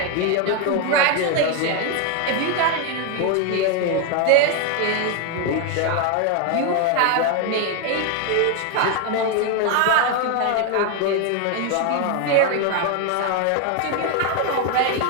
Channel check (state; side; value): different; both; correlation 0.01